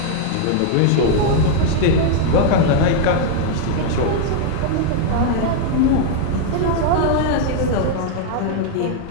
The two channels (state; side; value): different; both; correlation 0.00